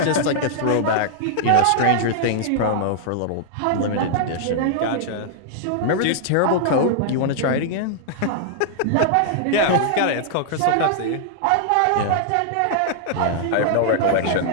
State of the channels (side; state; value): both; different; correlation -0.01